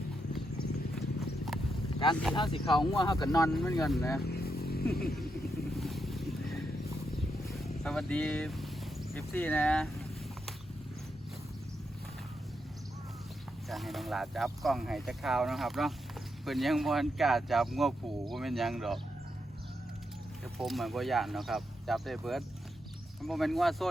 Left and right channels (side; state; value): both; normal; correlation 0.83